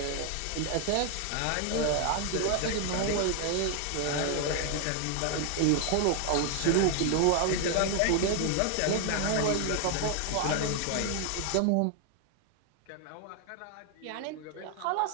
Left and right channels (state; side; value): different; both; correlation 0.00